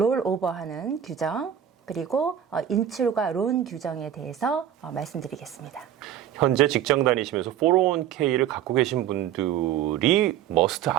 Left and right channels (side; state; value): left; quieter; 10.1 dB